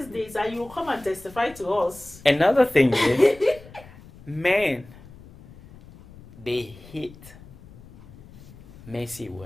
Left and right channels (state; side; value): noise; left; rumble, 20 dB below the sound